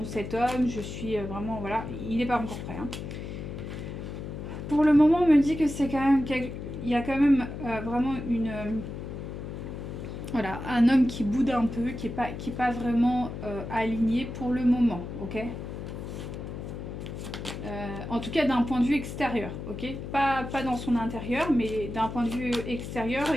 cet homme, je suis vraiment, voilà, il n'est pas encore prêt. Hein. Pour le moment, on me dit que c'est quand même, il y a quand même vraiment voilà, un homme qui boude un peu, qui est pas vraiment aligné pour le moment, ok ? En tout cas d'un point de vue extérieur, ok ? Pas dans son intérieur, mais d'un point de vue extérieur,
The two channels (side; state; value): left; noise; hum, 8 dB below the sound